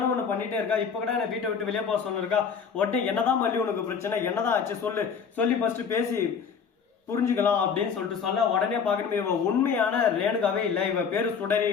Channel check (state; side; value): quieter; right; 6.5 dB